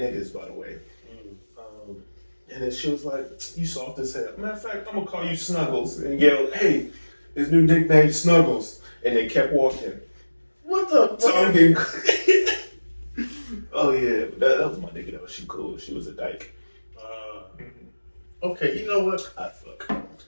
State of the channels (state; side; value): inverted; both; correlation -1.00